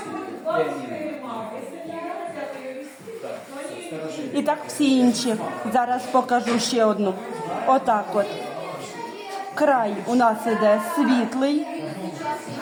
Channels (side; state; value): both; identical; correlation 1.00